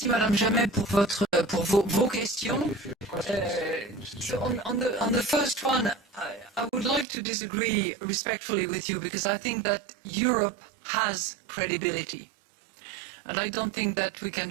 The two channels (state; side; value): drops out; left; at 7.1 s